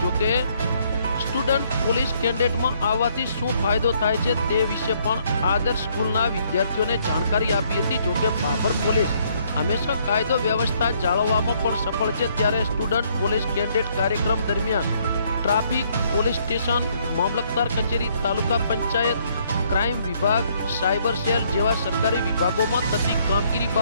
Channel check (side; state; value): both; inverted; correlation -0.67